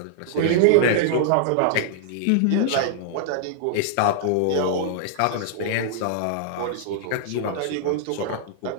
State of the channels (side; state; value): both; different; correlation -0.01